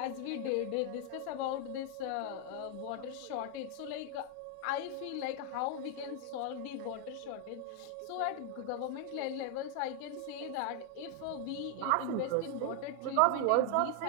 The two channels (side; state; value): both; different; correlation 0.00